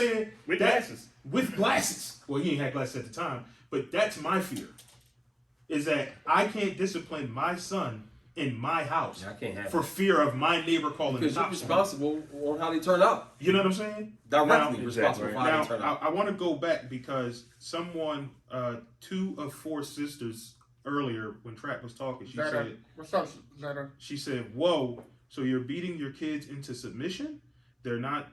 With glasses. With glasses. Well, he ain't had glasses at the time, but that's my fear. Is that I can't discipline my son in my house I can't have for fear of my neighbor calling the because you're cops. responsible on how they turn out. You know what I'm saying? Directly Now- responsible for how Now, they turn out. I want to go back because someone, 2 of 4 sisters earlier when Trap was talking, Zeta, what's up, Zeta? she said, "Whoa, so you're beating your kids into submission? They're not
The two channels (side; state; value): both; identical; correlation 1.00